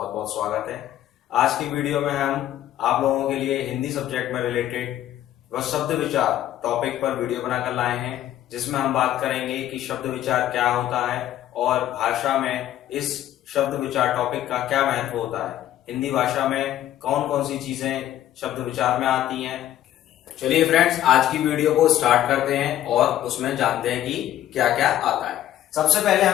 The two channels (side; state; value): right; quieter; 12.5 dB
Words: बहुत स्वागत है। आज की वीडियो में हम आप लोगों के लिए हिंदी सब्जेक्ट में रिलेटेड व शब्द विचार टॉपिक पर वीडियो बनाकर लाए हैं, जिसमें हम बात करेंगे कि शब्द विचार क्या होता है और भाषा में इस शब्द विचार टॉपिक का क्या महत्व होता है। हिंदी भाषा में कौन कौन सी चीजें शब्द विचार में आती हैं। चलिए फ्रेंड्स, आज की वीडियो को स्टार्ट करते हैं और उसमें जानते हैं कि क्या क्या आता है। सबसे पहले